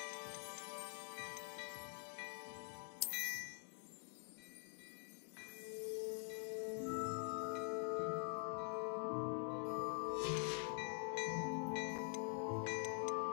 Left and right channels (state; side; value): quieter; right; 38.2 dB